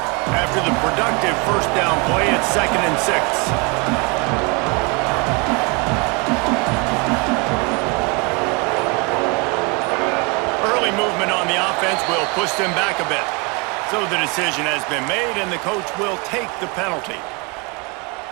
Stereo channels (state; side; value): quieter; left; 30.4 dB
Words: After the productive first down play, it's 2nd and 6. Movement on the offense will push them back a bit. So the decision has been made, and the coach will take the penalty.